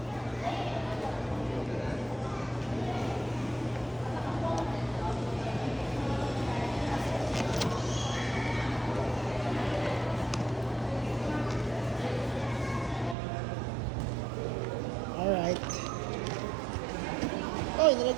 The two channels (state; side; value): drops out; left; at 13.2 s